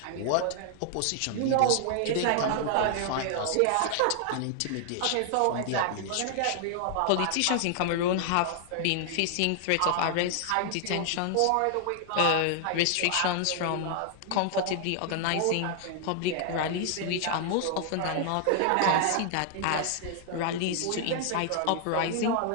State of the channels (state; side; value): different; both; correlation 0.00